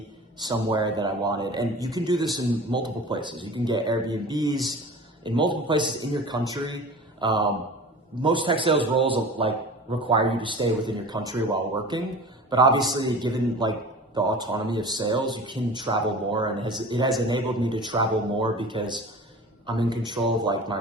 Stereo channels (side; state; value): both; normal; correlation 0.38